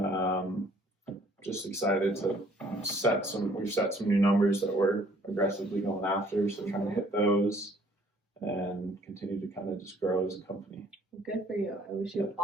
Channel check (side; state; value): both; normal; correlation 0.59